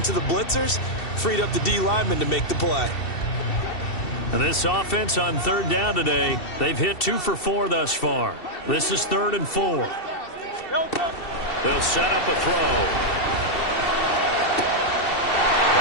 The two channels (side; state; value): right; late; 2.7 ms